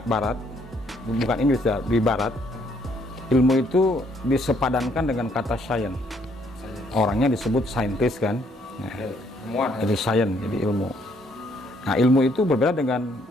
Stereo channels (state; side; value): normal; both; correlation 0.68